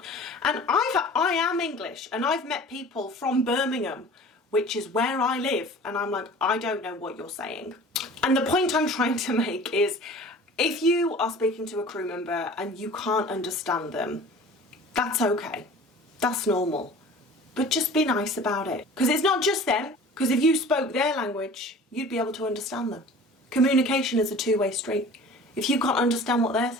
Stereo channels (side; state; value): both; normal; correlation 0.43